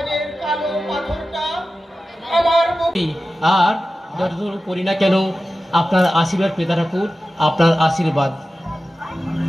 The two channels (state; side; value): normal; both; correlation 0.94